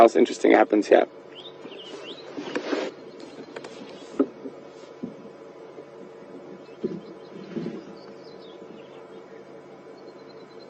interesting happens here.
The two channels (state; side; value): identical; both; correlation 1.00